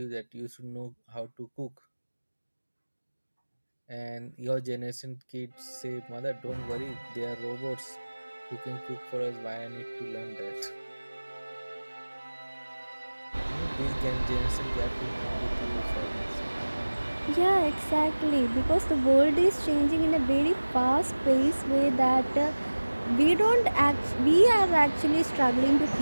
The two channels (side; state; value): both; inverted; correlation -1.00